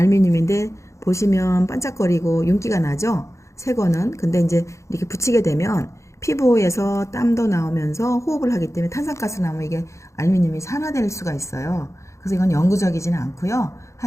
보시면 반짝거리고 윤기가 나죠? 새 거는. 근데 이제 이렇게 붙이게 되면 피부에서 땀도 나오면서 호흡을 하기 때문에 탄산가스 나오면 이게 알루미늄이 산화될 수가 있어요. 그래서 이건 영구적이지는 않고요.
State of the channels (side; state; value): right; late; 0.14 ms